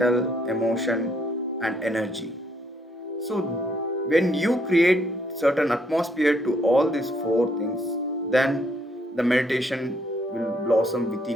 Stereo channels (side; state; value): both; normal; correlation 0.70